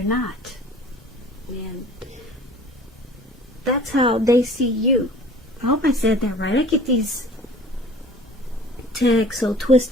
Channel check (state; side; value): normal; both; correlation 0.47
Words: not. And that's how they see you. I hope I said that right. I get these tags so